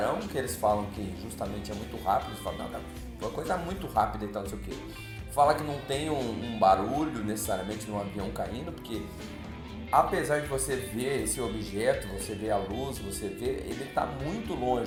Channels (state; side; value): identical; both; correlation 1.00